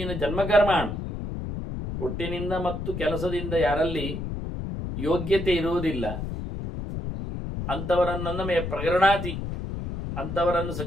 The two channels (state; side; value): noise; left; rumble, 5 dB below the sound